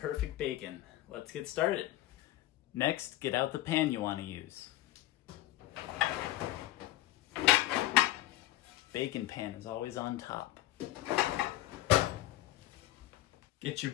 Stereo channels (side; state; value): right; quieter; 15.4 dB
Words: bacon. Let's get started. Next, get out the pan you want to use. Bacon pan is always on top. Get your